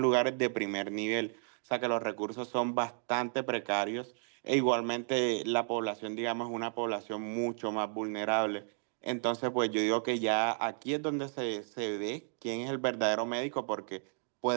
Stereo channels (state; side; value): silent; left; 56 dB below the other